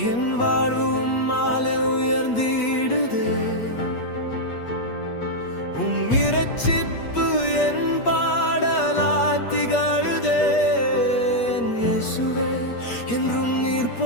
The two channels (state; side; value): late; right; 8.4 ms